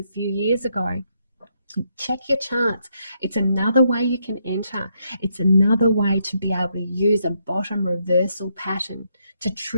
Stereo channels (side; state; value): both; inverted; correlation -0.77